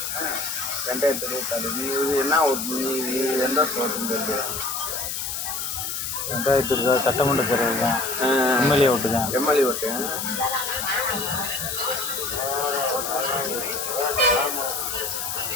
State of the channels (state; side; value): noise; left; hiss, 4 dB below the sound